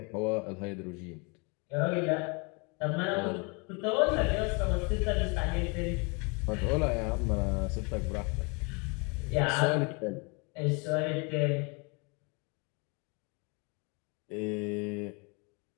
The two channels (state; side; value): quieter; right; 31.6 dB